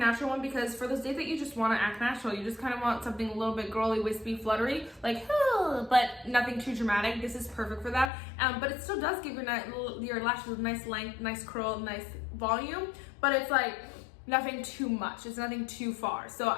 one because for those days that you just want to act natural, you just kind of want something a little bit girly, wispy, fluttery, like, but nothing too dramatic. This is perfect for that. But it still does give your lashes a nice length, nice curl, nice volume, but it's like nothing too much. It's nothing too far. So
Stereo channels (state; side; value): drops out; right; at 8.1 s